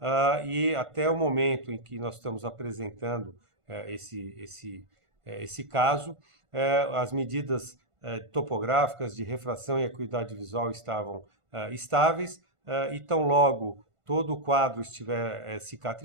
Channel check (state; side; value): late; left; 1.5 ms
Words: e até o momento em que nós estamos apresentando esse caso, as medidas topográficas de refração e acuidade visual estavam estáveis, e tão logo todo o quadro estiver